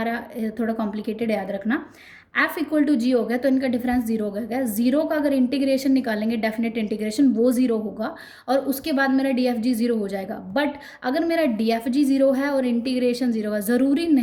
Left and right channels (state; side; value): identical; both; correlation 1.00